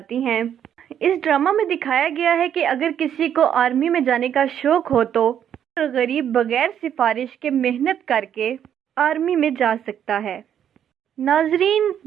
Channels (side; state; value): left; quieter; 9.4 dB